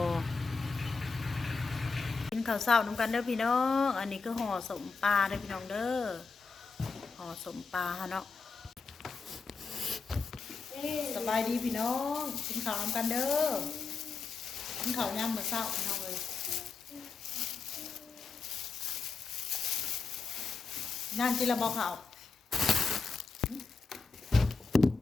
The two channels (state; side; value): quieter; right; 4.5 dB